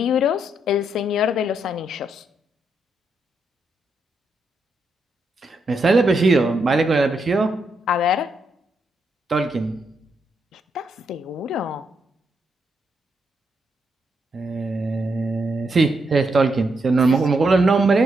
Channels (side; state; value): both; normal; correlation 0.80